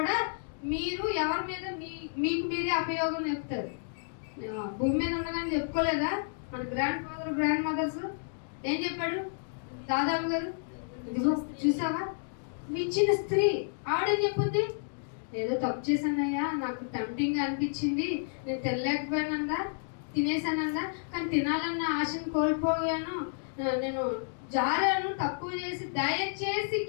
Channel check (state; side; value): silent; right; digital silence